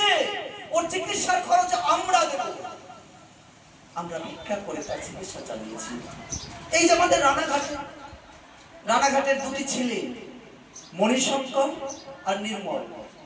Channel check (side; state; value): both; identical; correlation 1.00